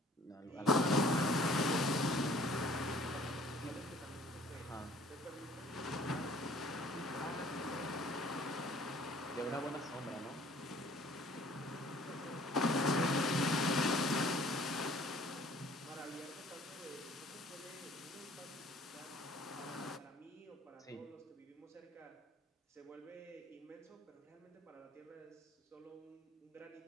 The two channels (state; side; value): normal; both; correlation 0.54